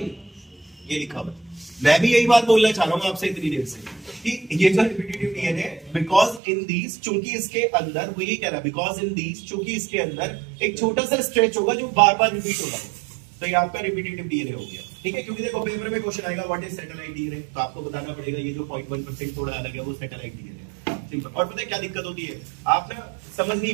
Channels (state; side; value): drops out; left; at 6.4 s